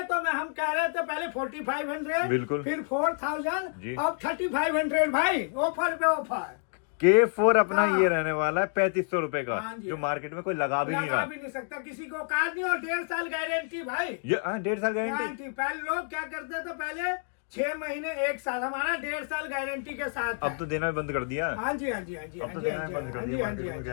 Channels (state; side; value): silent; right; 59 dB below the other